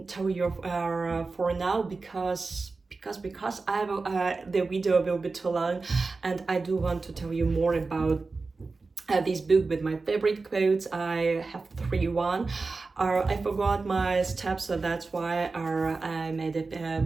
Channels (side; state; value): left; quieter; 4.0 dB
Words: tell you for now, because I will, the video will be too long, and I do want to tell you more about this book with my favorite quotes. I have one. I forgot my steps, so that's why I made